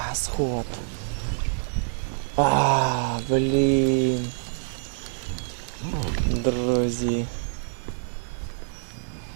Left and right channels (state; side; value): silent; left; 61 dB below the other